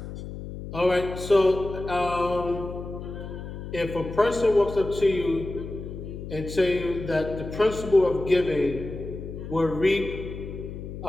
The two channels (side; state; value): left; noise; hum, 9 dB below the sound